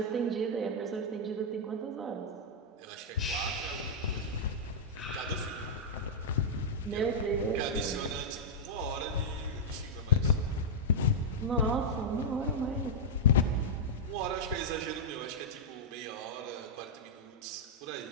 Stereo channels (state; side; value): normal; both; correlation -0.05